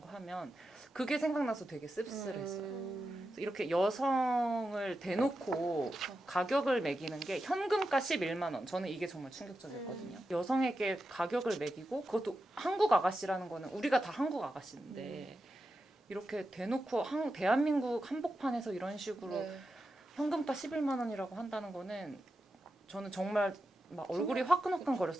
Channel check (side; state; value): both; normal; correlation 0.90